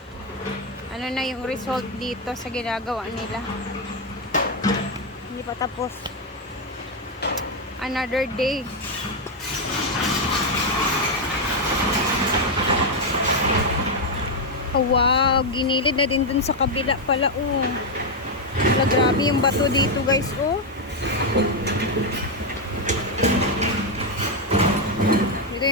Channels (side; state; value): both; normal; correlation 0.04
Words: Ano na yung result dito sa ginagawa nila. Hindi pa tapos. Another day. Oh, wow, ginilid na din dun sa kabila pala, oh. Wala, grabe yung bato dito, guys, oh. Dito